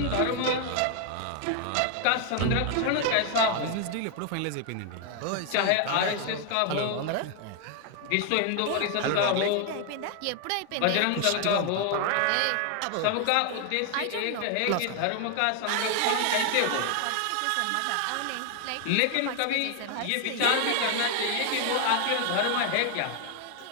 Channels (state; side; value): different; both; correlation 0.00